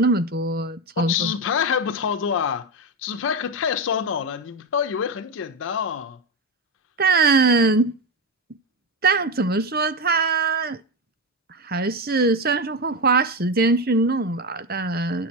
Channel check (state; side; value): normal; both; correlation 0.14